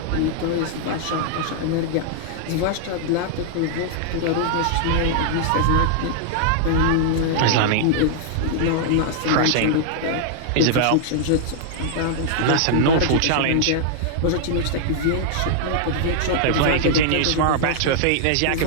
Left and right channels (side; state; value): both; different; correlation -0.01